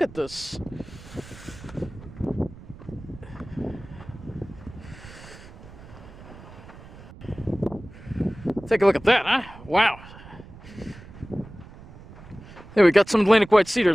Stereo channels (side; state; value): right; noise; rumble, 18 dB below the sound